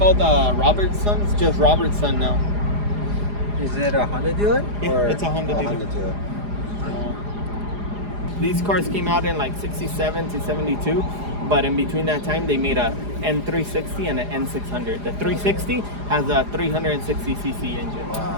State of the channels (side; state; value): left; late; 4.9 ms